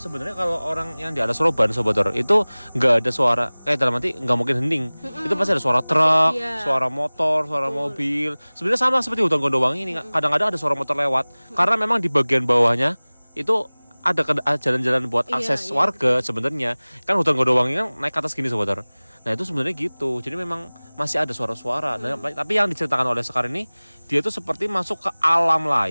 sebenarnya kalau orang yang di alas Roban Sobat Horor itu nggak ada suara, dalam arti nggak mungkin hening. Itu pasti ada suara truk, Iya. suara motor, suara mobil. Sebenarnya sama seperti hutan Gondowangi ini, kadang-kadang ada suara motor lewat. Karena memang di bagian bawahnya itu ada jalan-jalan buat akses warga sebenarnya. Kan hutan Gondowangi kan naik ke atas gini Sobat Horor. Nah itu sebenarnya gitu. Jadi memang masih ada suara-suara. Nah, tapi yang diceritakan oleh Sekar ini, dia tuh seperti masuk ke alam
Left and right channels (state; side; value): inverted; both; correlation -1.00